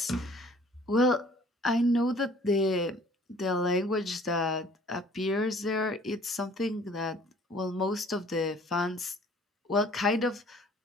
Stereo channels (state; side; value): normal; both; correlation 0.54